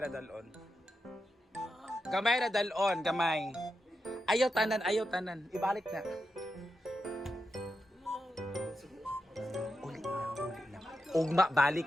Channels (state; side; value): normal; both; correlation 0.87